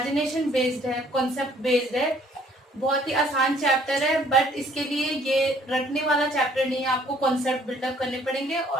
बेस्ड है, कॉन्सेप्ट बेस्ड है। बहुत ही आसान चैप्टर है बट इसके लिए ये रटने वाला चैप्टर नहीं है। आपको कॉन्सेप्ट बिल्डअप करने पड़ेंगे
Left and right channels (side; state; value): both; normal; correlation 0.60